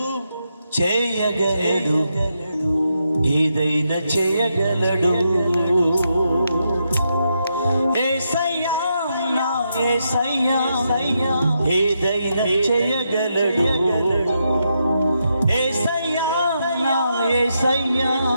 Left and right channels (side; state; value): both; inverted; correlation -0.82